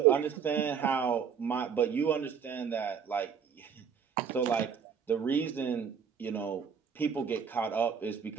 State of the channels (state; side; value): quieter; left; 7.0 dB